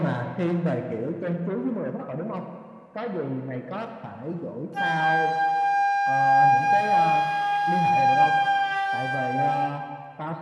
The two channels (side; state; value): both; identical; correlation 1.00